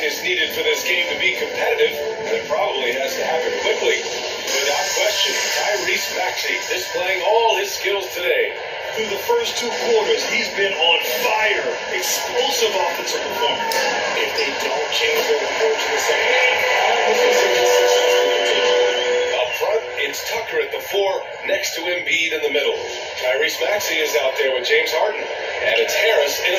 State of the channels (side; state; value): both; identical; correlation 1.00